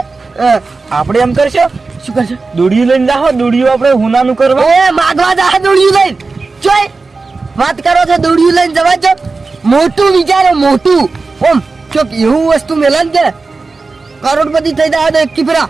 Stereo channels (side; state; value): left; quieter; 4.0 dB